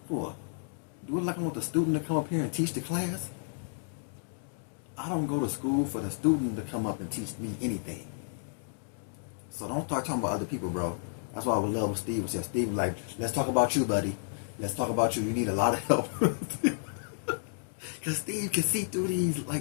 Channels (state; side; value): silent; right; digital silence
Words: For? Do it like I want the student to come up here and teach the class? I don't go to school for the student to come up and teach me anything. So don't start talking about other people, bro. That's why I would love what Steve would say. Steve was like, let's talk about you, buddy. Let's talk about you. You need a lot of help. Because Steve can see through